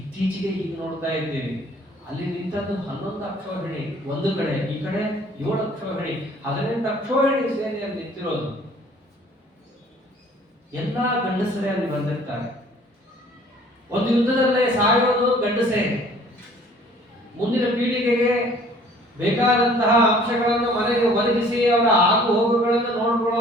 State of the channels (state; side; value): normal; both; correlation 0.54